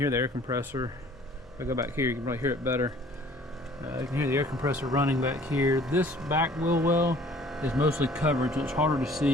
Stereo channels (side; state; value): both; normal; correlation 0.53